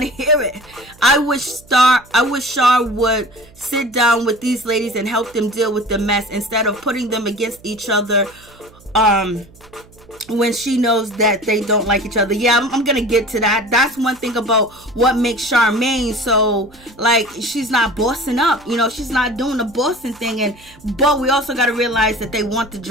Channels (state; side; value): noise; right; hum, 25 dB below the sound